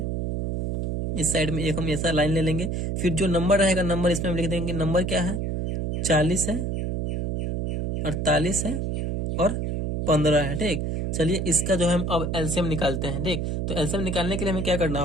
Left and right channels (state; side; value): noise; right; hum, 1 dB below the sound